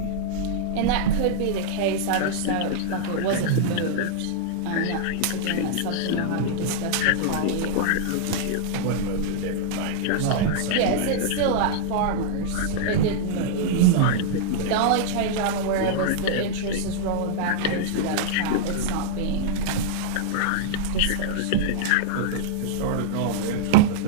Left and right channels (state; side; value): different; both; correlation -0.01